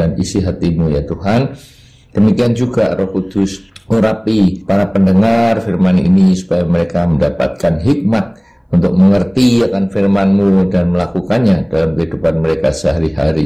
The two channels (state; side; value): identical; both; correlation 1.00